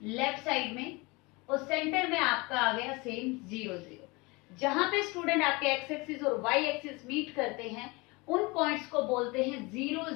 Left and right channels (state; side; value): quieter; right; 25.6 dB